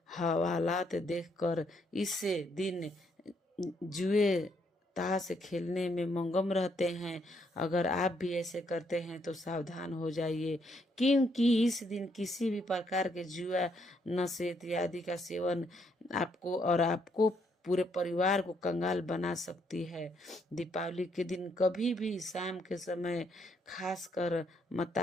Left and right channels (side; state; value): both; normal; correlation 0.73